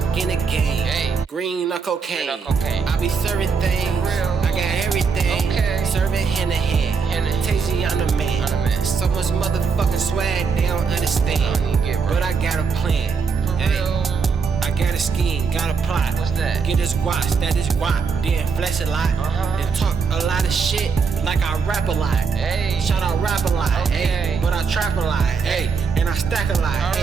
in the game. Hey. Green or cocaine. I be serving things. I got everything. Okay. Serving hand to hand. Tasty on the man. So much motherfucking swag they don't understand. But I got a plan. Hey. Got a scheme, got a plot. What's that? Get this guap, that is guap. Then flex a lot. Then talk a lot of shit like I rap a lot. Hey. Shout out rap a lot. Okay. Hey. But I trap a lot. Hey. And I stack a lot.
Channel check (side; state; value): left; quieter; 5.4 dB